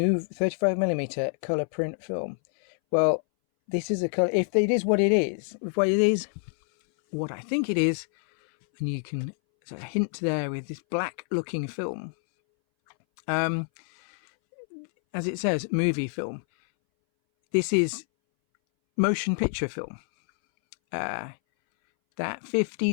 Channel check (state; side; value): silent; right; 60 dB below the other